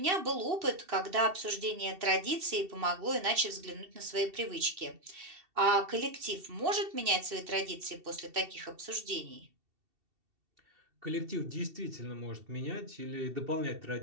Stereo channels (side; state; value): left; late; 2.7 ms